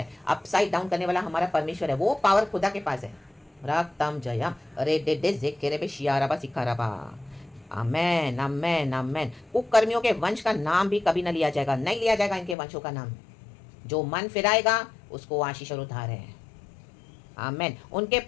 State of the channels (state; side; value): drops out; right; at 12.6 s